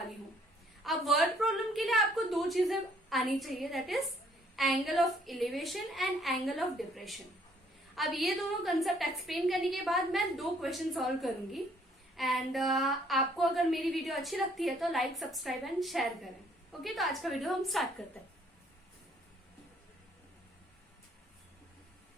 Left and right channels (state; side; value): normal; both; correlation 0.64